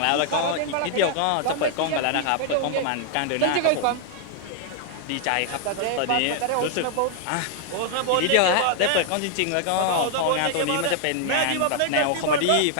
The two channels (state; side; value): different; both; correlation -0.01